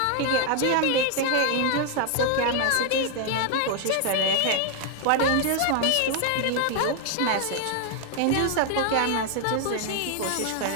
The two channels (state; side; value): different; both; correlation 0.00